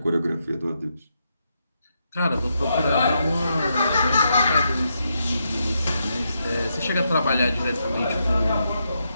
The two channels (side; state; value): both; inverted; correlation -0.82